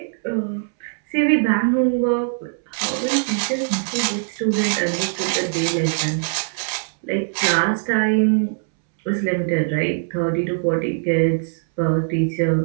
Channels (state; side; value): silent; left; 65 dB below the other